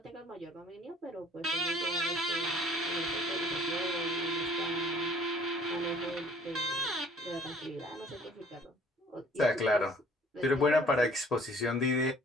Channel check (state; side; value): normal; both; correlation 0.54